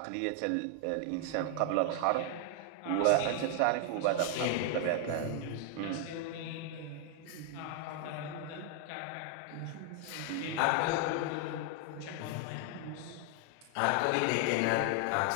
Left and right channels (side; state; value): both; different; correlation 0.00